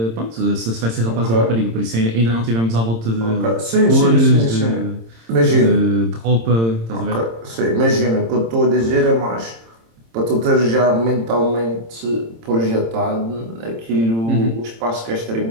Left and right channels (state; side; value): late; left; 26 ms